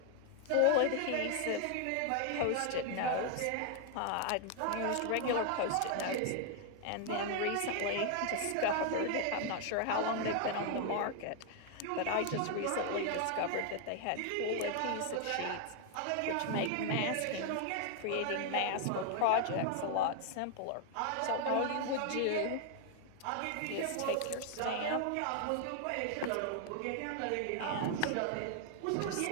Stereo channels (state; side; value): different; both; correlation 0.00